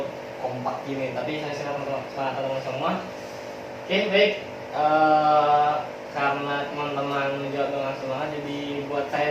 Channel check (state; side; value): identical; both; correlation 1.00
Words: kompak gini, tapi saya silakan teman-teman semua. Oke, baik. Karena teman-teman menjawab dengan semangat, jadi buat